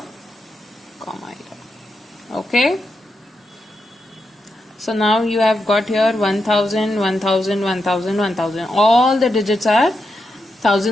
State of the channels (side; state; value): both; normal; correlation 0.85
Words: comma here. Okay? So now you have got here 1,000, 1,000, 1,000, 1,000. All the digits are